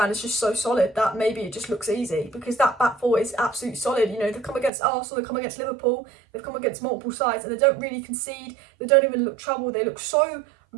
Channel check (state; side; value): drops out; left; at 4.7 s